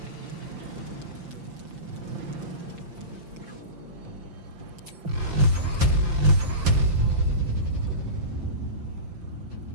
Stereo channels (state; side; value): late; left; 5.8 ms